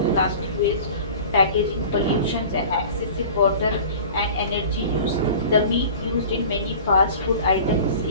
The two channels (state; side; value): inverted; both; correlation -0.40